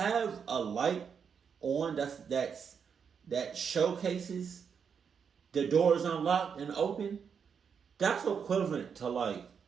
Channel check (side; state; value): left; quieter; 6.7 dB